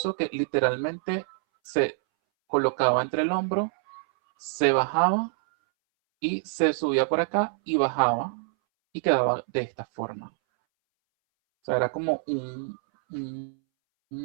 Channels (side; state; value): left; silent; 61 dB below the other